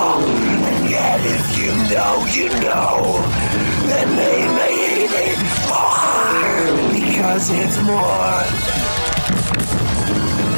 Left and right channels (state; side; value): inverted; both; correlation -1.00